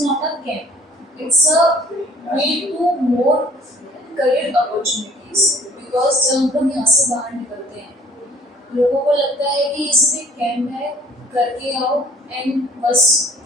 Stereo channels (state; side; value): normal; both; correlation 0.54